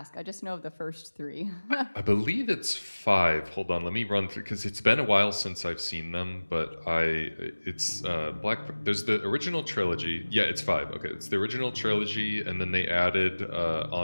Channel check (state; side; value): inverted; both; correlation -1.00